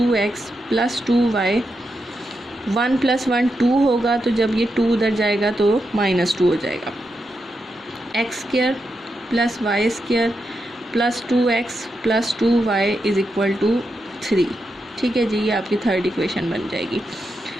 plus 2y। 1 plus 1 2 होगा, तो जब ये 2 उधर जाएगा तो -2 हो जाएगा। X square plus Y square plus 2x plus 2y is equal to 3, ठीक है जी। ये आपकी थर्ड इक्वेशन बन जाएगी।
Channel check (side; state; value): both; normal; correlation 0.86